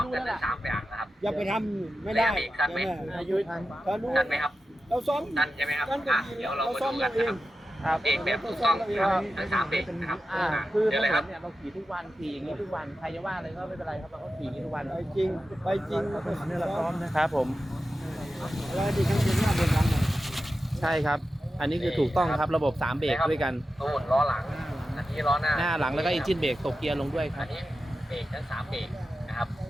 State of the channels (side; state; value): both; normal; correlation 0.92